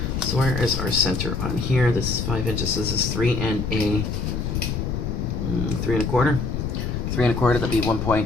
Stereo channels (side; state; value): left; noise; rumble, 2 dB below the sound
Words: So where is our center on here? This is 5 inches. This is 3 and a 3 1/4. 3 1/4, that'd be